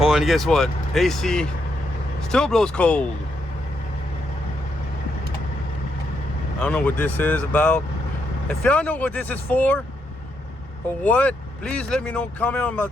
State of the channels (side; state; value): both; normal; correlation 0.79